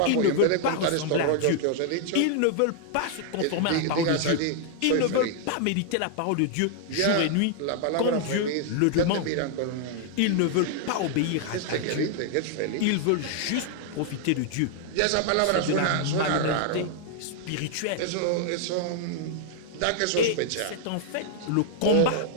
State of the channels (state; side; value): different; both; correlation 0.00